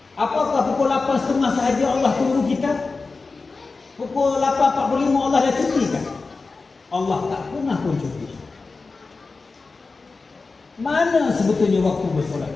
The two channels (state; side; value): quieter; right; 4.0 dB